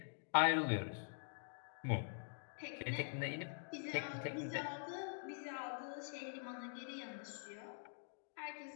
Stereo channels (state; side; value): silent; right; digital silence